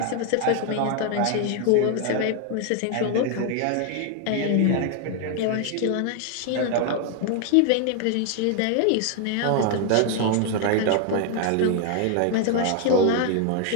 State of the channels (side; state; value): both; different; correlation 0.00